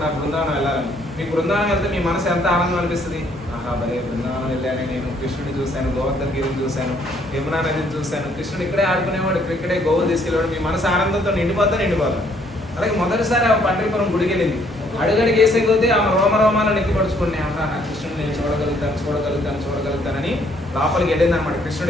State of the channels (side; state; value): both; normal; correlation 0.66